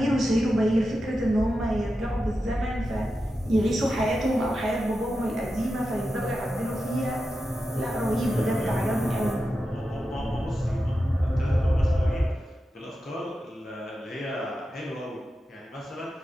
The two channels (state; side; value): normal; both; correlation 0.90